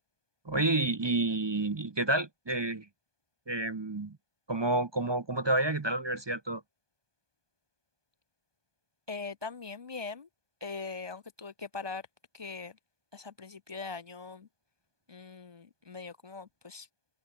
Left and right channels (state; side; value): late; left; 1.2 ms